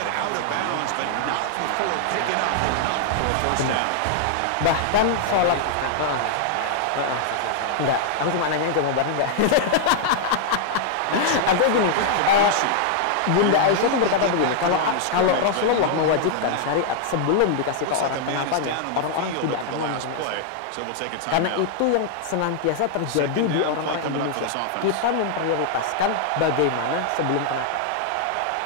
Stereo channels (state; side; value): different; both; correlation -0.01